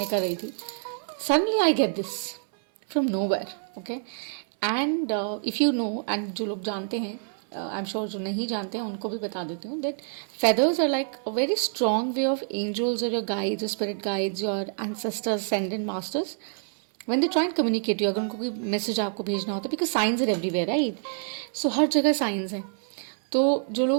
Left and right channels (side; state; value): left; silent; 60 dB below the other